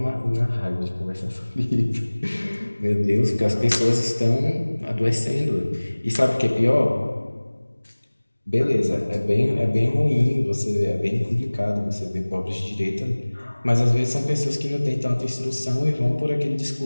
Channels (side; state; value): both; inverted; correlation -1.00